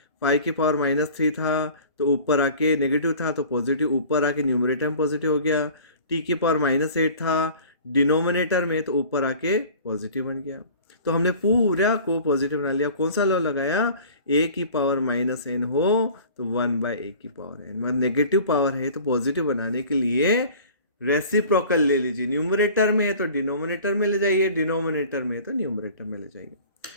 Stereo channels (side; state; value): both; inverted; correlation -0.45